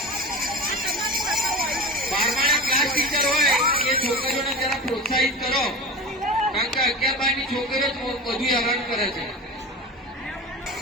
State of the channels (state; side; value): normal; both; correlation 0.31